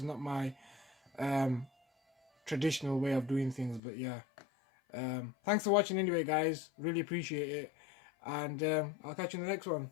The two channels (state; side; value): drops out; right; at 3.8 s